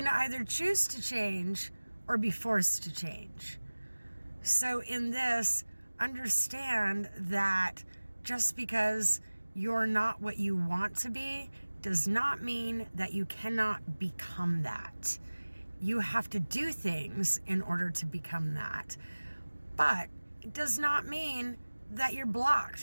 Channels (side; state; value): both; inverted; correlation -1.00